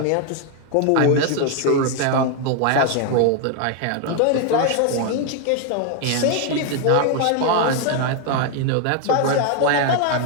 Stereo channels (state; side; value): different; both; correlation 0.01